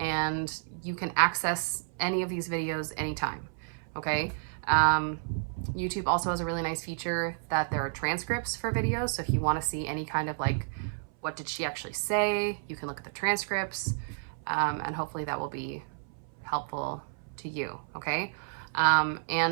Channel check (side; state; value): left; silent; 57 dB below the other